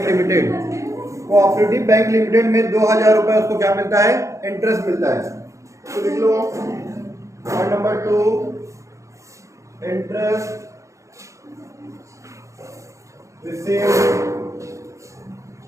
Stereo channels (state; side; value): late; left; 0.15 ms